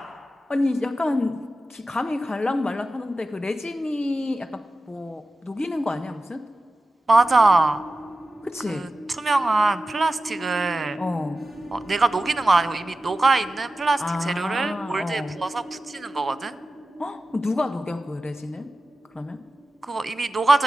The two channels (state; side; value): normal; both; correlation 0.93